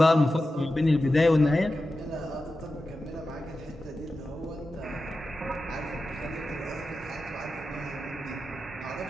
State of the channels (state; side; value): normal; both; correlation 0.92